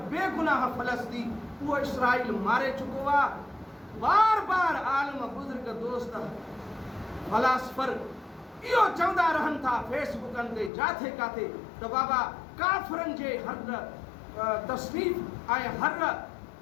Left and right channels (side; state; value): right; drops out; at 10.7 s